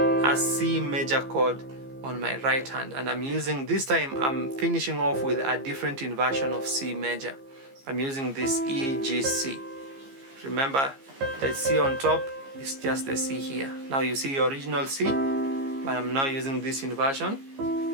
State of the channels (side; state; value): left; late; 15 ms